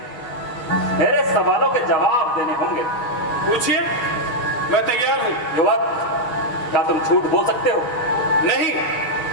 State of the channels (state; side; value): late; right; 6.5 ms